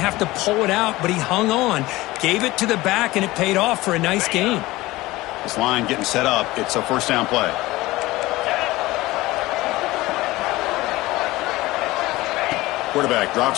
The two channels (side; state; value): right; quieter; 19.0 dB